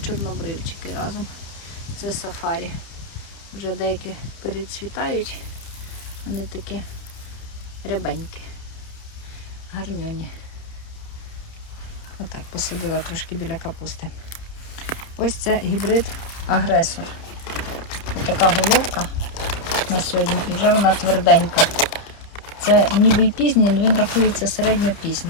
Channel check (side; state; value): right; late; 30 ms